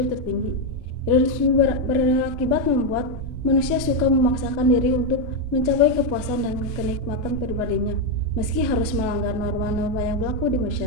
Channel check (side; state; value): both; normal; correlation 0.04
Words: tertinggi. Hedonisme berakibat membuat manusia suka memaksakan diri untuk mencapai kepuasan dan kenikmatan pribadinya, meski harus melanggar norma-norma yang berlaku di